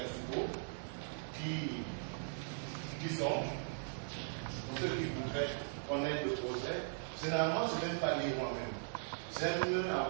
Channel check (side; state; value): left; silent; digital silence